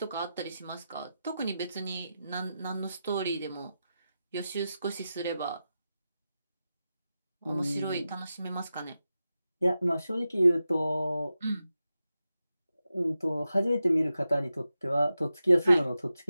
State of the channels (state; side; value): inverted; both; correlation -0.91